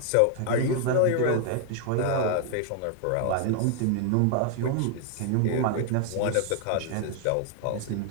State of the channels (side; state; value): both; different; correlation 0.00